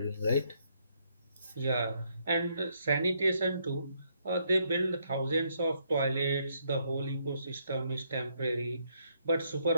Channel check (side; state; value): both; inverted; correlation -0.74